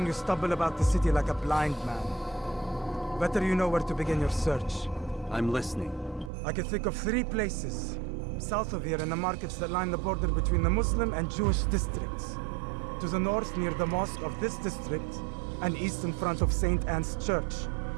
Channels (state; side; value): drops out; left; at 6.3 s